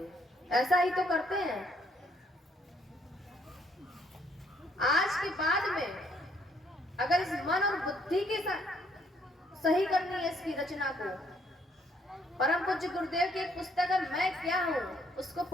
ऐसा ही तो करते हैं। आज के बाद में अगर इस मन और बुद्धि के सही करनी है इसकी रचना को, परम पूज्य गुरुदेव की एक पुस्तक है मैं क्या हूं, उसको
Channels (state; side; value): normal; both; correlation 0.67